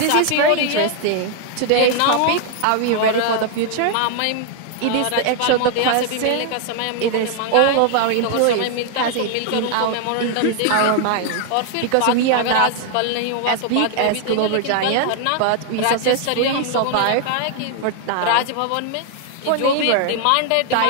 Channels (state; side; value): different; both; correlation 0.00